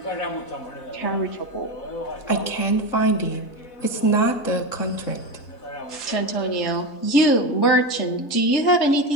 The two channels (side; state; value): right; late; 3.7 ms